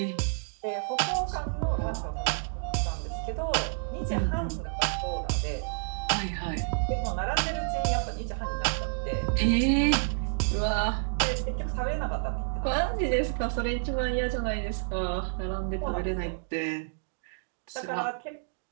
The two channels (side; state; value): left; silent; digital silence